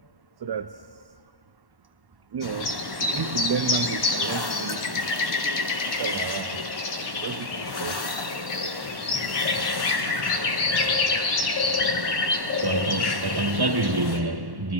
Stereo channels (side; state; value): left; late; 1.1 ms